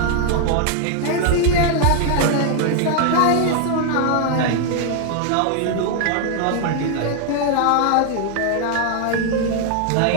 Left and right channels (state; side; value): different; both; correlation 0.00